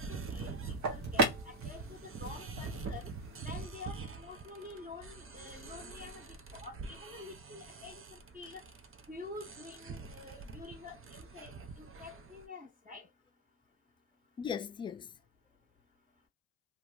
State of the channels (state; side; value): normal; both; correlation 0.07